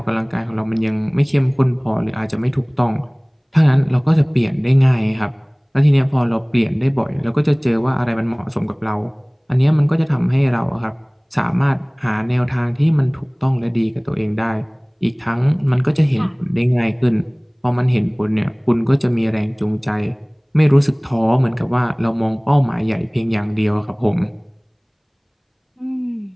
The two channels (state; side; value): identical; both; correlation 1.00